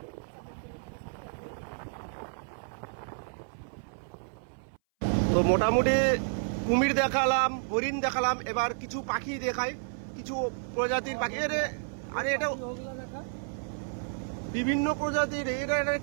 তো মোটামুটি কুমির দেখালাম, হরিণ দেখালাম, এবার কিছু পাখি দেখাই, কিছু প্রজাতির পাখি। আরে এটা বিভিন্ন প্রজাতির, এটা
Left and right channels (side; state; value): left; silent; 57 dB below the other